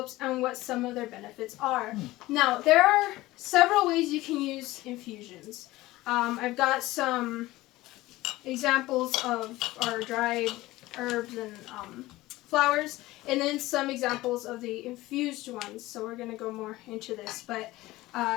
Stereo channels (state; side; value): quieter; right; 18.2 dB